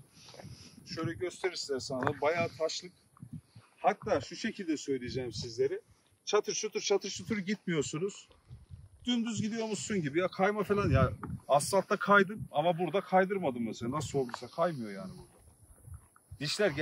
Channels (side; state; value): both; identical; correlation 1.00